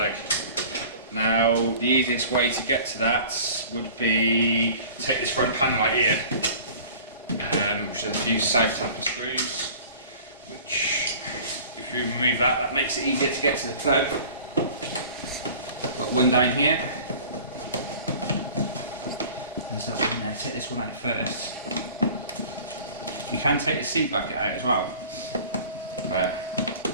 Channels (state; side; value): inverted; both; correlation -0.44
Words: Now the easiest way to get to that would be take this front panel right here, which has a few south taper screws, which if you remove that, that makes it easier to get to the plug. Got one down here. There's that one there. Take this one out first. You can take the seat bracket out as well, but